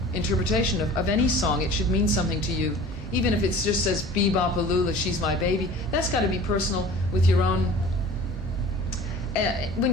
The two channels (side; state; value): both; normal; correlation 0.42